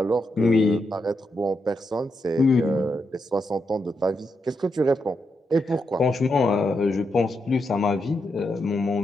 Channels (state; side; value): normal; both; correlation 0.83